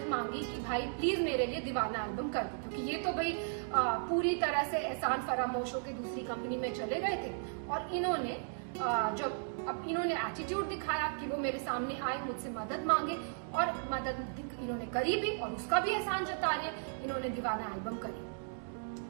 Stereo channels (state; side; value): silent; left; digital silence